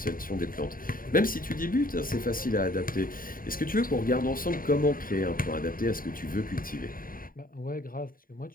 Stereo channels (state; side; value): late; right; 0.41 ms